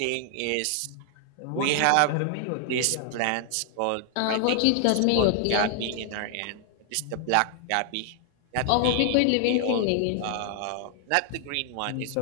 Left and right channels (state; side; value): different; both; correlation 0.00